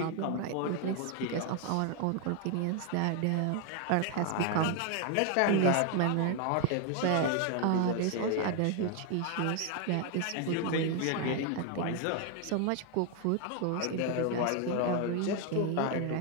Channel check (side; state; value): both; different; correlation 0.01